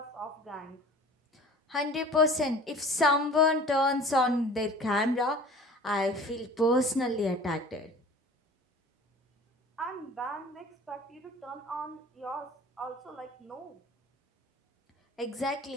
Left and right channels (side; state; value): both; normal; correlation 0.44